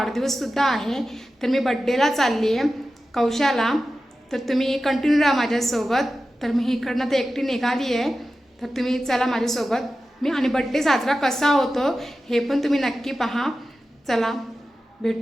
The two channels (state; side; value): normal; both; correlation 0.93